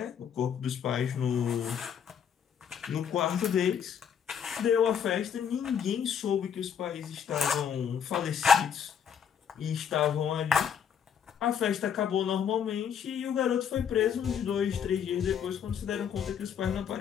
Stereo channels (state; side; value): quieter; right; 8.0 dB